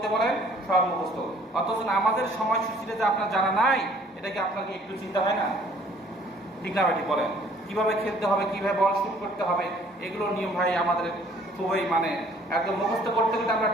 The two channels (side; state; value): both; normal; correlation 0.57